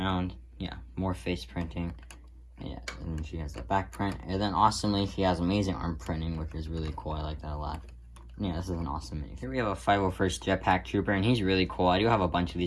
Yeah, more face printing. Yeah, and she has the back print. And then, awesomely, she has amazing arm printing, which is really cool. I like that a lot. Yeah, this is an awesome minifigure. Here we have a 501st Jetpack Trooper, and he's really cool. I do have a bunch of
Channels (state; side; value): identical; both; correlation 1.00